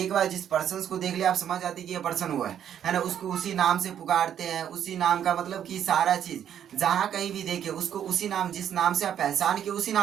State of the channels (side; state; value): left; quieter; 9.6 dB